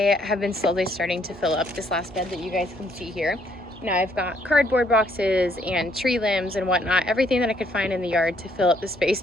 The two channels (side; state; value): both; normal; correlation 0.68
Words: have been slowly starting to fill up this last bed that you guys can see here. Now I've got cardboard boxes and tree limbs and whatnot, everything that I could find in the yard to fill up the space